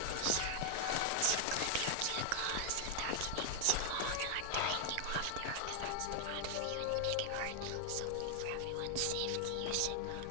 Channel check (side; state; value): both; different; correlation 0.00